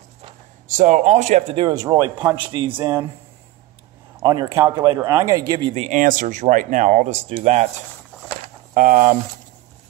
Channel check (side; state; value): left; quieter; 16.9 dB